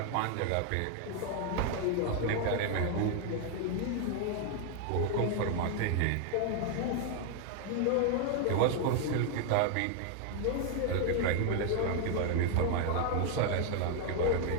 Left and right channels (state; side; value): different; both; correlation 0.00